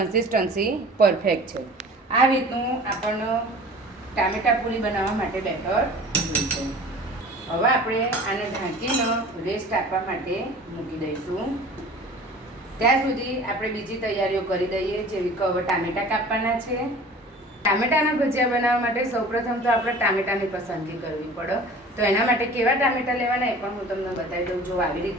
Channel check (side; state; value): both; normal; correlation 0.43